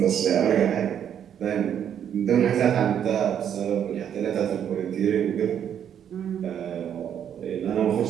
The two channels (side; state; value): left; quieter; 9.1 dB